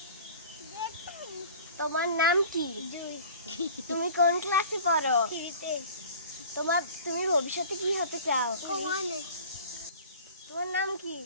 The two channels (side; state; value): both; inverted; correlation -0.43